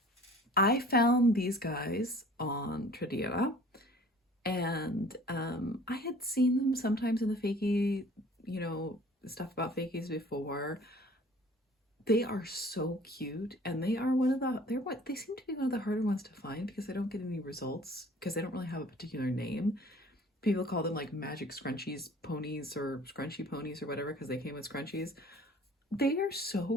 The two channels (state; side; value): normal; both; correlation 0.49